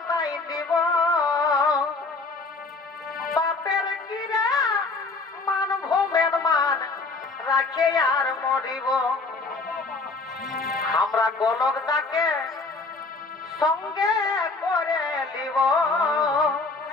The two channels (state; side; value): quieter; right; 3.7 dB